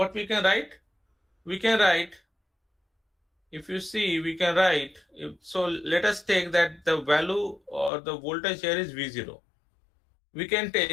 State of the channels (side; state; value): right; drops out; at 7.9 s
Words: we can write? We can write, if you see, we can write, so let us take that the value or the voltage here is V0. We can